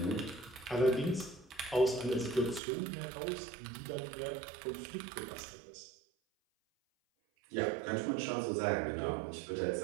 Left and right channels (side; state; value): left; drops out; at 2.6 s